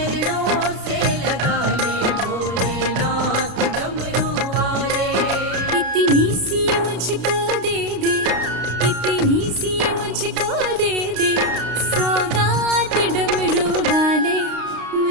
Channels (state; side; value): late; left; 32 ms